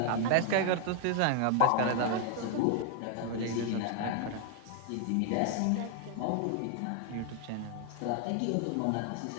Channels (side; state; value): both; different; correlation 0.00